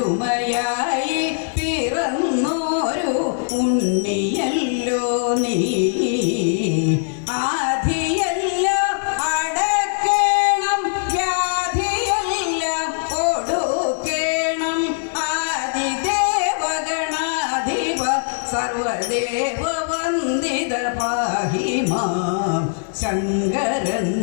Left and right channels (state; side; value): silent; right; digital silence